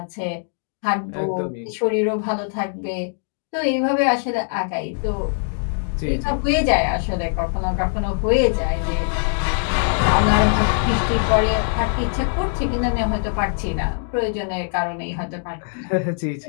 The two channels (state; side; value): silent; right; digital silence